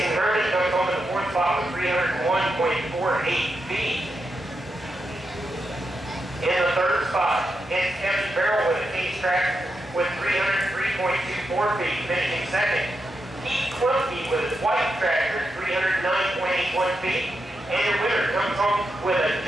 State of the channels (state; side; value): normal; both; correlation 0.86